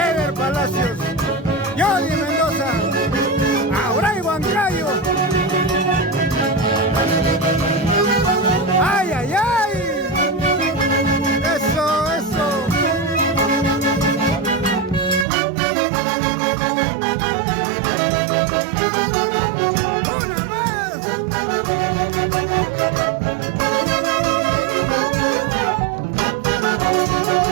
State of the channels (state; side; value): drops out; left; at 15.2 s